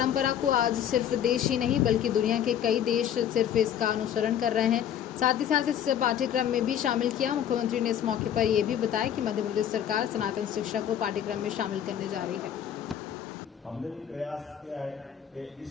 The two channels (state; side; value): quieter; right; 9.7 dB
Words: को आज सिर्फ देश ही नहीं बल्कि दुनिया के कई देश सिर्फ इसका अनुसरण कर रहे हैं। साथ ही साथ इस पाठ्यक्रम में भी शामिल किया। मुख्यमंत्री ने इस मौके पर यह भी बताया कि मध्य प्रदेश सरकार सनातन शिक्षा को पाठ्यक्रम में शामिल करने जा रही है। हमने भी प्रयास किया है कि